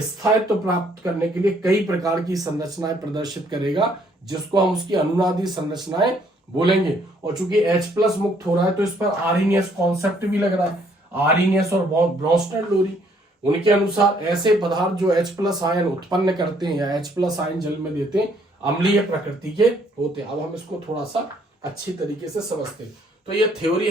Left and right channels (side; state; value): both; normal; correlation 0.66